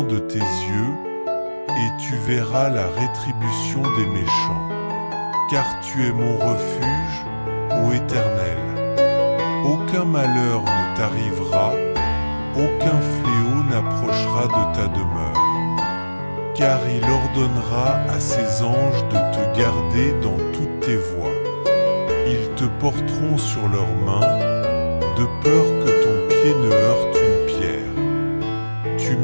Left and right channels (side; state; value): both; inverted; correlation -1.00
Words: de tes yeux, et tu verras la rétribution des méchants. Car tu es mon refuge, ô Éternel. Aucun malheur ne t'arrivera, aucun fléau n'approchera de ta demeure. Car il ordonnera à ses anges de te garder dans toutes tes voies. Ils te porteront sur leurs mains, de peur que ton pied ne heurte une pierre. Tu